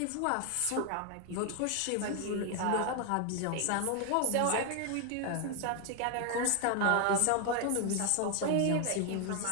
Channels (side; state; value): both; different; correlation 0.00